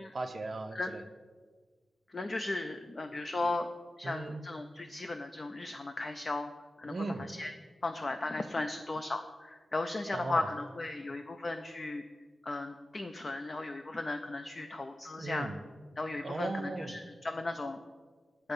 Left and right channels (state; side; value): normal; both; correlation 0.94